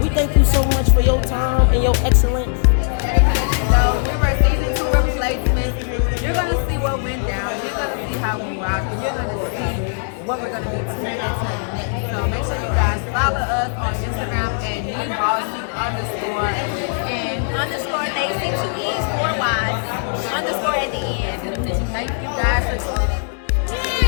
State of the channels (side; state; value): right; silent; 62 dB below the other